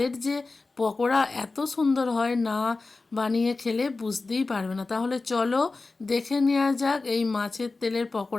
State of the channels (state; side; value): quieter; right; 3.7 dB